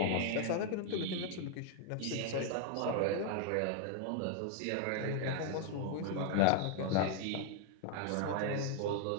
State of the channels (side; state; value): both; different; correlation 0.00